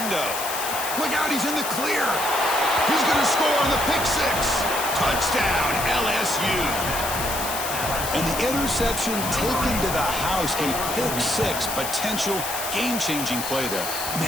Look out, he's in the clear. He's going to score on the pick six. Touchdown, LSU. And the interception taken to the house. A pick six, potential game-changing play there.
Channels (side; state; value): left; noise; hiss, 5 dB below the sound